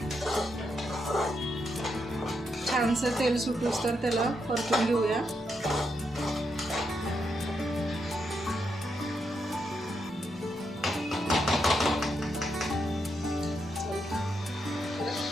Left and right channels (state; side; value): normal; both; correlation 0.81